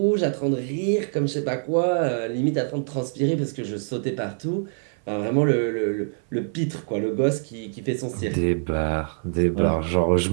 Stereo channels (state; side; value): silent; left; 56 dB below the other